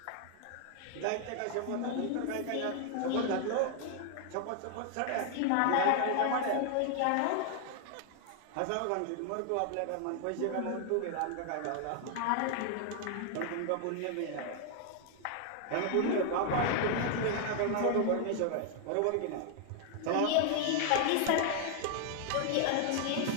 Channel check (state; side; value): different; both; correlation 0.00